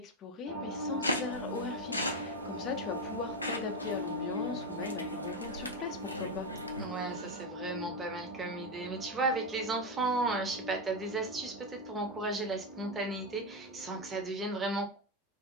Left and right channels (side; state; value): both; normal; correlation 0.09